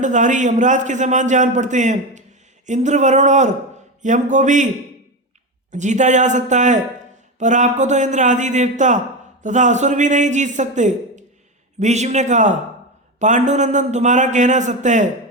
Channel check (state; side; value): normal; both; correlation 0.17